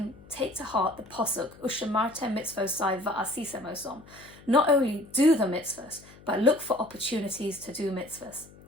take to heart the posuk, Ushamartem mitzvosai va'asisem osom. Not only do the mitzvahs, but look for opportunities to do mitzvahs.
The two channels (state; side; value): noise; left; hum, 22 dB below the sound